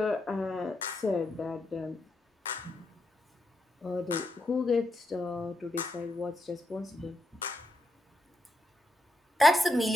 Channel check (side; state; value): both; normal; correlation 0.83